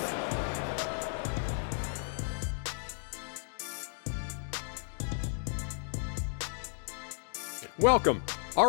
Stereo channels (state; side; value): silent; right; digital silence